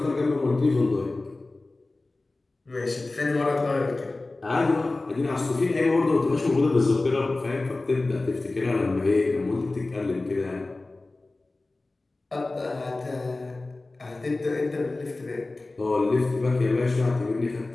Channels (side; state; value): right; quieter; 3.1 dB